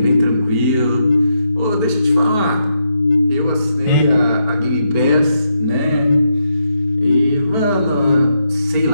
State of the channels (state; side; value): late; right; 4.5 ms